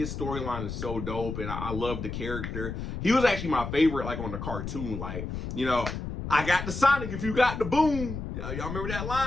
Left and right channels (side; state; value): left; noise; rumble, 6 dB below the sound